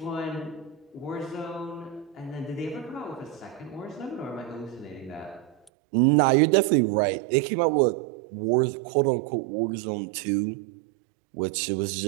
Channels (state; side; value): drops out; left; at 5.6 s